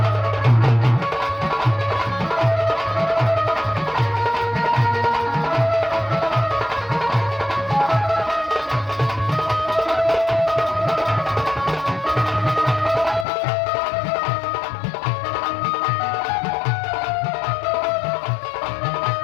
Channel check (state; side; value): drops out; right; at 13.2 s